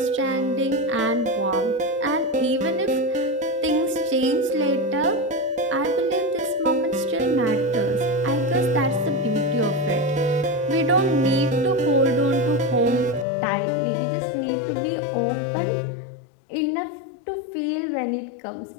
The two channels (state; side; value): drops out; right; at 13.2 s